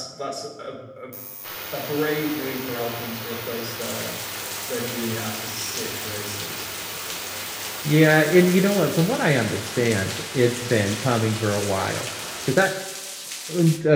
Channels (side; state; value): both; identical; correlation 1.00